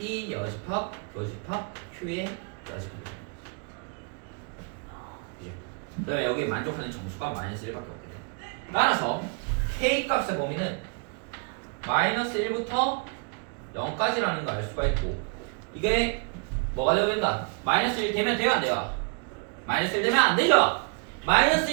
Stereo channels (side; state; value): left; quieter; 36.2 dB